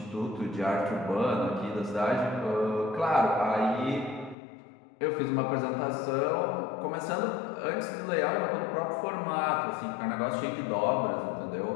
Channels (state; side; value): drops out; right; at 4.4 s